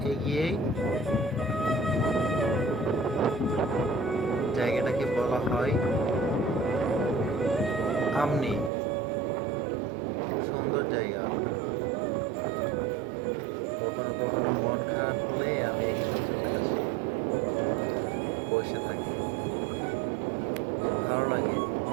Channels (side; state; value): left; drops out; at 8.7 s